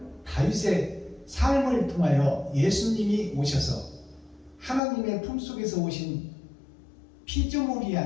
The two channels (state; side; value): drops out; right; at 4.8 s